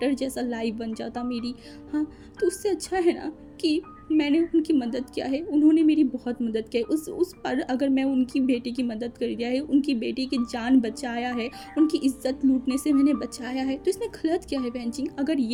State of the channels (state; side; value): identical; both; correlation 1.00